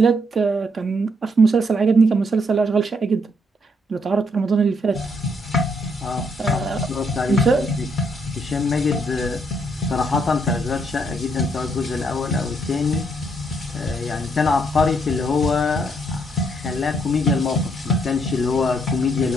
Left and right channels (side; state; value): both; normal; correlation 0.72